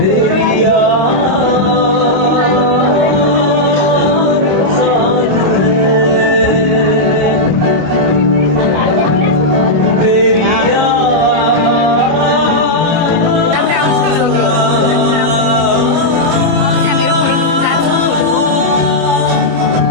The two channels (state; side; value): late; left; 25 ms